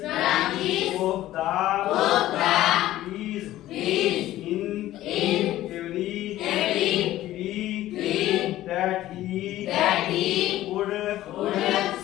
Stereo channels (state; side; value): quieter; right; 14.7 dB